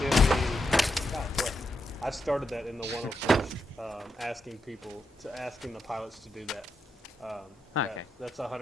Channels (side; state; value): both; normal; correlation 0.83